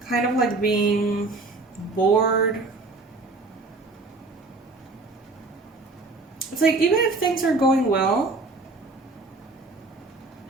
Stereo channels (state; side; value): quieter; left; 3.4 dB